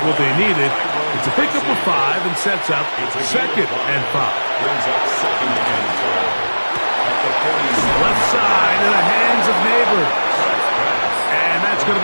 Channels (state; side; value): inverted; both; correlation -1.00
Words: what they needed. It's a pickup of 5 and sets up 2nd and 5. Left side in the hands of Neighbors. And that's going